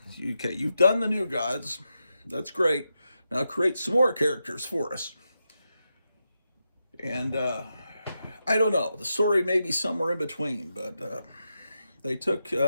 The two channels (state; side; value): inverted; both; correlation -0.87